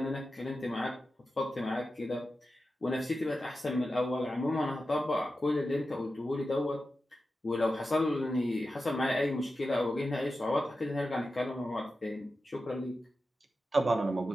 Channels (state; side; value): normal; both; correlation 0.92